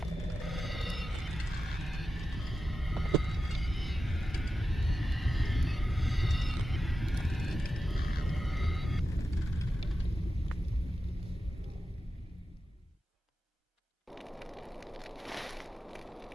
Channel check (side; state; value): both; normal; correlation 0.91